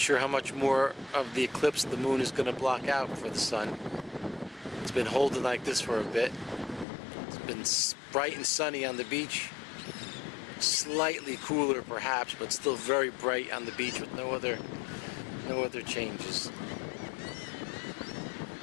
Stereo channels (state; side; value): drops out; right; at 6.9 s